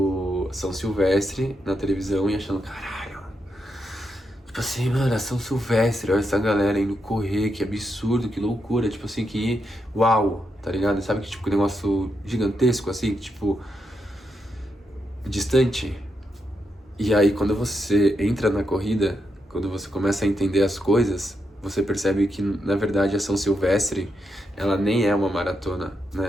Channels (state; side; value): normal; both; correlation 0.83